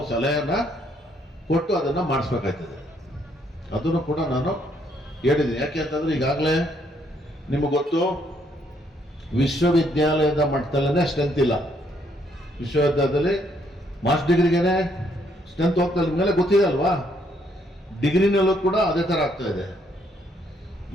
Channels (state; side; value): normal; both; correlation 0.70